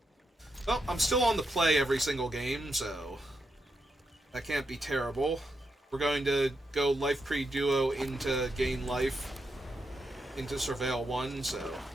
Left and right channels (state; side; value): normal; both; correlation 0.83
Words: Well, I'm still on the play every single game, so that can't be terrible. We're going to go Life Pre Duo into Gain Life, into Surveil 1, so